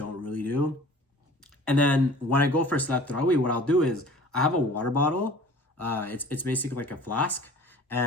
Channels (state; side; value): normal; both; correlation 0.46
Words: really do. And then when I go for Salat Tarawih, what I'll do is I have a water bottle. It's basically like a flask,